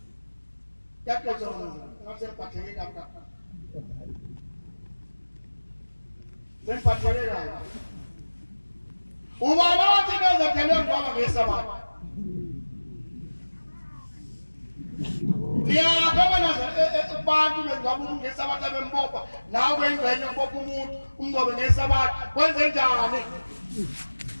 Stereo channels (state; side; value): inverted; both; correlation -1.00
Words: yakhona ngasembatheke lapha Sempathelele la. Ubani othi bezothelwe ngoba ngesabatha. Ngiyabona nazo abantu bengaba ngesabatha bembopha nawe engcenye ubopha umuntu umnqobe ngesabatha kwenze njani?